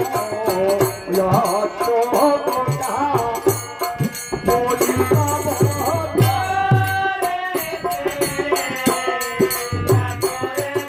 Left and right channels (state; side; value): identical; both; correlation 1.00